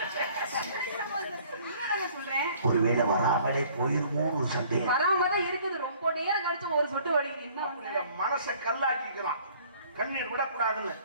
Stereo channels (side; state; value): both; inverted; correlation -0.56